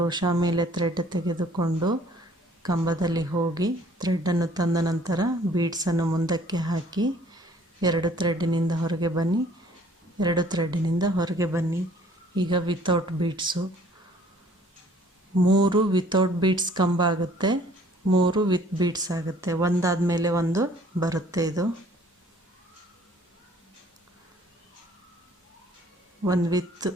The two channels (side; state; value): both; normal; correlation 0.57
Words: ಮೇಲೆ ಥ್ರೆಡ್ ತೆಗೆದುಕೊಂಡು ಕಂಬದಲ್ಲಿ ಹೋಗಿ ಥ್ರೆಡ್ಡನ್ನು ತಂದ ನಂತರ ಬೀಡ್ಸನ್ನು ಮುಂದಕ್ಕೆ ಹಾಕಿ 2 ಥ್ರೆಡ್ಡಿನಿಂದ ಹೊರಗೆ ಬನ್ನಿ, 2 ಥ್ರೆಡ್ಡಿನಿಂದ ಹೊರಗೆ ಬನ್ನಿ. ಈಗ ವಿತೌಟ್ ಬೀಡ್ಸು 3 ವಿತೌಟ್ ಬೀಡ್ಸ್ ಕಂಬ ಆಗುತ್ತೆ, 3 ವಿತ್ ಬೀಡ್ಸ್ ಆಗುತ್ತೆ. ಒಂದಾದ ಮೇಲೆ ಒಂದು ಬರುತ್ತೆ. ಇದು ಒಂದು